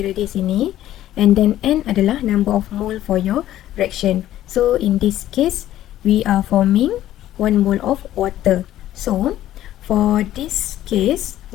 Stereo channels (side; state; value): right; quieter; 13.2 dB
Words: di sini, and then N adalah number of mole for your reaction. So in this case we are forming 1 mole of water. So for this case,